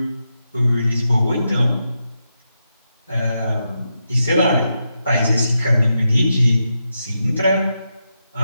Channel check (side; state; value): both; inverted; correlation -0.86